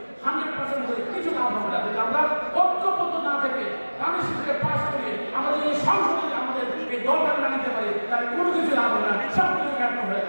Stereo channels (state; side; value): inverted; both; correlation -1.00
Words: 100% করে কিছু লাভ হবে না যদি আমরা ঐক্যবদ্ধ না থেকে বাংলাদেশকে পাস করিয়ে আমাদের এই সংসদে আমাদের এই দলটাকে না নিতে পারি তাহলে কোনো কিছু লাভ হবে না, সব কিছু ব্যর্থ হয়ে